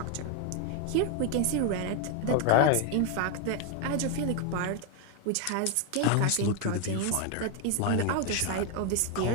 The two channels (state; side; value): different; both; correlation 0.01